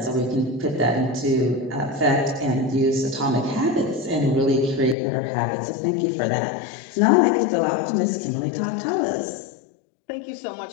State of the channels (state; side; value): drops out; right; at 5.0 s